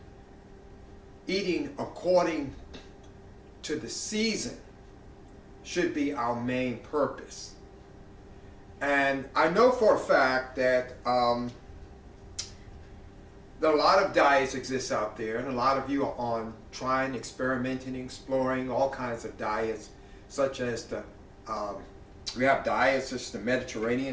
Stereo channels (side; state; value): both; identical; correlation 1.00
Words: eating according to the season should be our main purpose. And I know for a fact that a lot of diets exist out there, and a lot of you are on trying, experimenting, exploring all kinds of diets, such as we have diets such as the